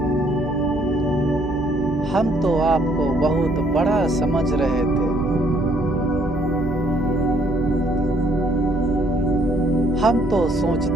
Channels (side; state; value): both; normal; correlation 0.65